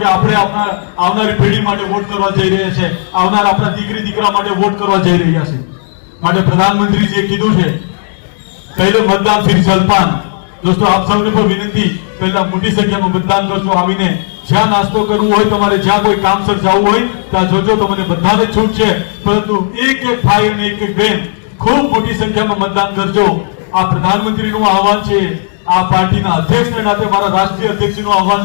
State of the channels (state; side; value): silent; right; digital silence